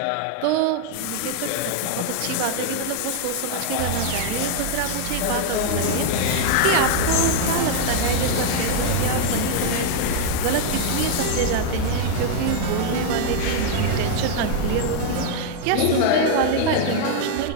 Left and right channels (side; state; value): both; different; correlation 0.00